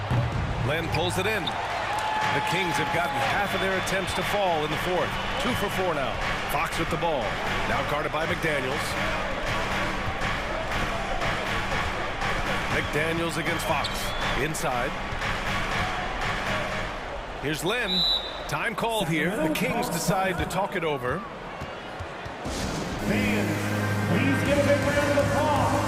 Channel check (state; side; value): identical; both; correlation 1.00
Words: Len pulls it in. The Kings have gotten half of their attempts to fall in the 4th. 2 for 4 now. Fox with the ball. Now guarded by McDaniels. McDaniels against Fox. Inside. Here's Len. Time called here. The Kings decide to talk it over. Fans, please give a big round of applause